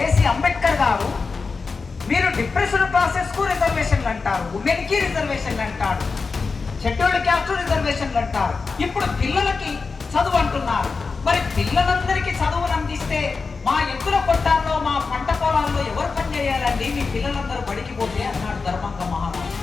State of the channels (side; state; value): right; quieter; 4.5 dB